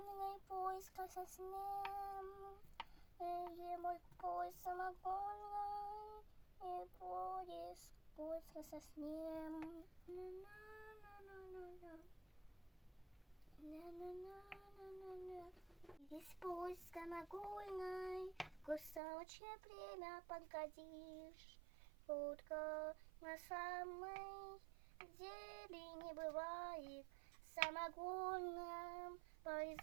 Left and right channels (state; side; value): drops out; left; at 19.0 s